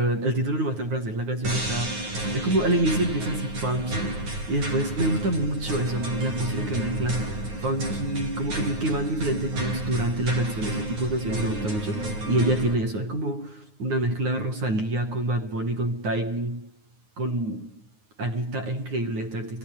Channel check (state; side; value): late; left; 9.5 ms